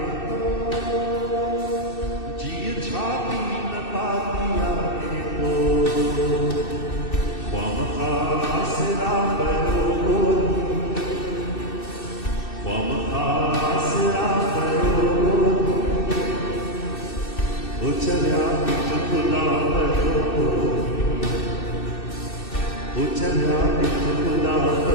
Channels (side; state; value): right; late; 2.6 ms